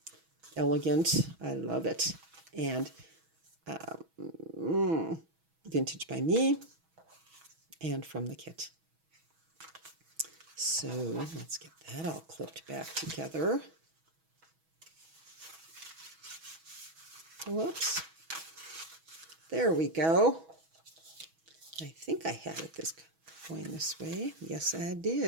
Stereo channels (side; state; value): left; late; 6.2 ms